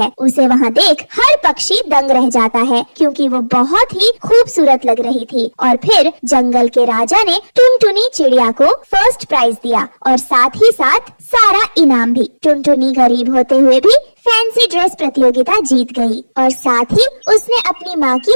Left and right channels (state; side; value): inverted; both; correlation -1.00